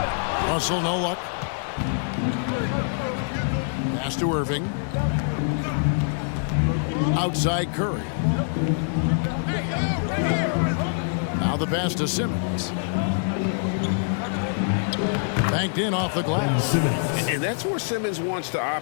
Russell, no luck. Pass to Irving. Outside Curry. Now the pass to Simmons. Banked in off the glass. And that's where Simmons wants to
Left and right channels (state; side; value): silent; right; digital silence